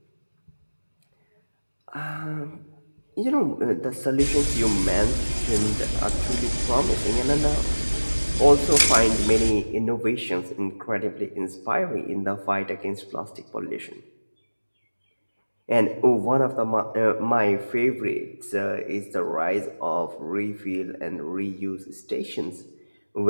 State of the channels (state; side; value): inverted; both; correlation -1.00